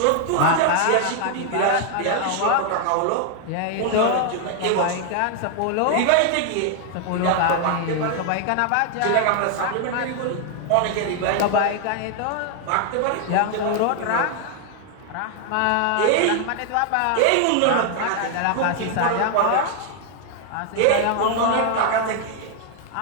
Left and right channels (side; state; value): both; different; correlation 0.00